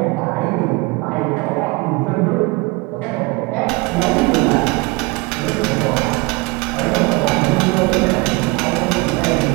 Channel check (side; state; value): left; quieter; 26.0 dB